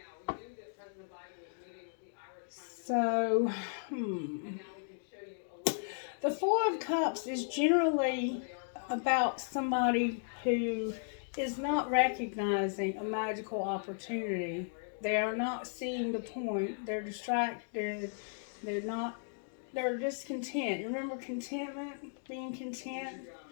So, the Four of Cups is generally about somebody who is not recognizing a magical opportunity. They are not seeing the point. They're distracted. They're discontent. Remember contentment? Being content?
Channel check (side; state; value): right; silent; digital silence